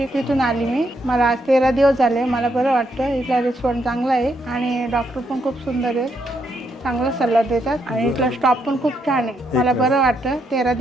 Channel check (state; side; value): normal; both; correlation 0.77